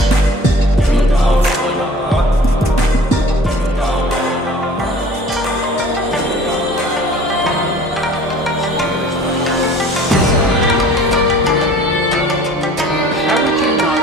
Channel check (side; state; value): both; normal; correlation 0.48